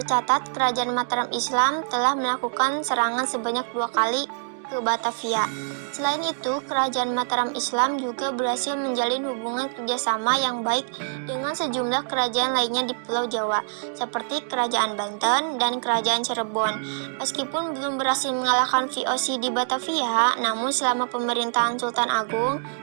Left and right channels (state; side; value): silent; left; digital silence